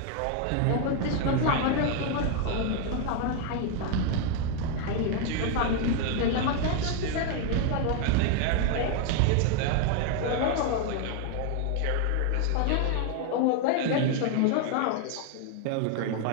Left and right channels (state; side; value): different; both; correlation 0.01